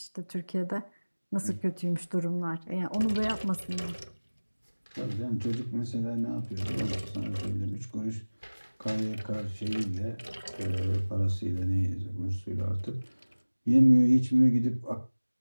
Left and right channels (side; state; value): both; inverted; correlation -1.00